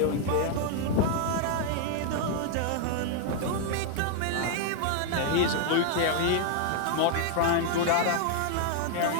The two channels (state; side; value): different; both; correlation 0.00